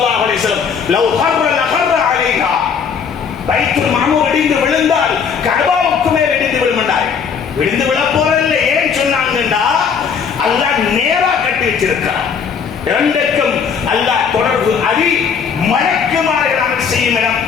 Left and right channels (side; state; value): right; quieter; 6.5 dB